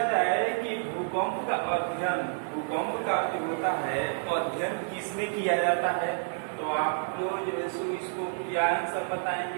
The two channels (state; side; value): silent; left; digital silence